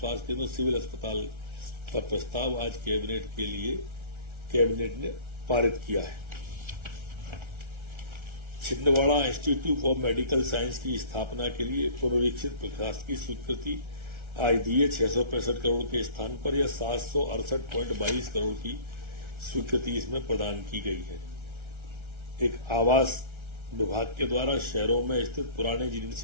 केंद्र, सिविल अस्पताल का प्रस्ताव आज कैबिनेट ने पारित किया है। Chhindwara institute for medical science की स्थापना के लिए पुनरीक्षित प्रशासकीय स्वीकृति आज दी है। 665 करोड़ के स्थान पर यह 768.22 करोड़ की स्वीकृति इसमें प्रदान की गई है। एक आवास विभाग के द्वारा शहरों में स्थित पुराने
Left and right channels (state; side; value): late; left; 1.3 ms